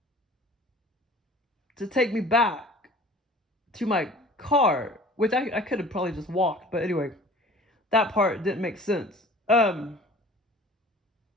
to take me back to my car, which I could have probably just walked. But anyway, that part didn't make sense.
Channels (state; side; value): normal; both; correlation 0.46